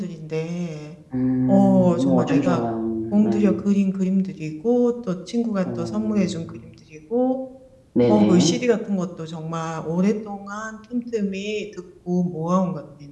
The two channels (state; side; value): identical; both; correlation 1.00